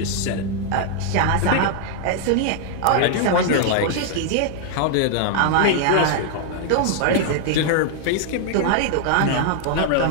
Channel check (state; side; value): different; both; correlation 0.00